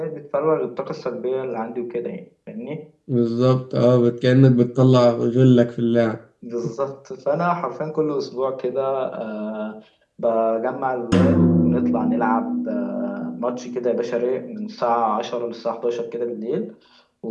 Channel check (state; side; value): identical; both; correlation 1.00